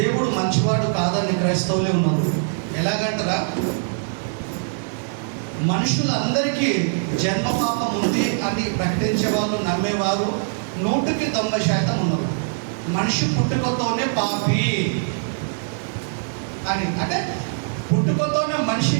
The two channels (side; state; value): left; silent; digital silence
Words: మంచివాడు కాదని క్రైస్తవులే ఉన్నారు. ఎలాగంటారా, మనుషులందరికీ జన్మ పాపం ఉంది అని ప్రకటించే వాళ్ళు, నమ్మేవారు 100% ఉన్నారు. మనిషి పుట్టుకతోనే పాపి అని, అంటే పుట్టుకతోనే మనిషి